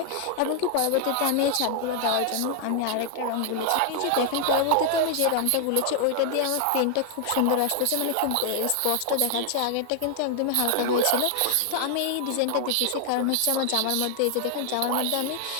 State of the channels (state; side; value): different; both; correlation 0.00